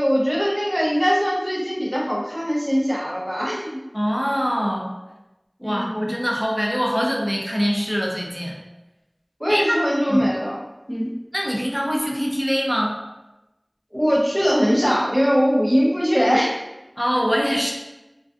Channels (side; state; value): both; identical; correlation 1.00